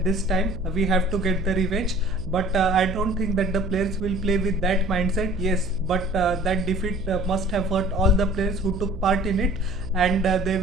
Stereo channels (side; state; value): right; noise; hum, 11 dB below the sound